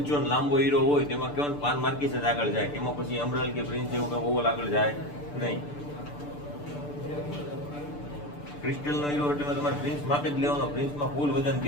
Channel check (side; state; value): right; late; 6.8 ms